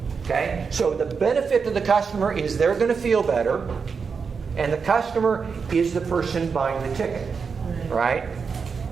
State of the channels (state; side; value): quieter; left; 5.6 dB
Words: Okay? So the benefit to the customer is they're going to feel better, and the customer is the person buying the ticket. Right?